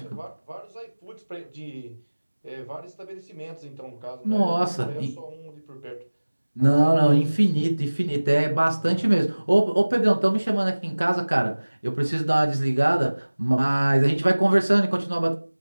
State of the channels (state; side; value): inverted; both; correlation -1.00